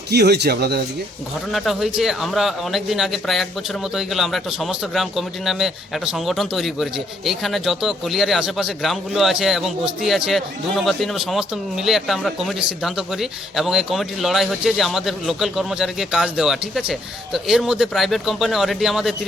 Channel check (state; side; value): normal; both; correlation 0.69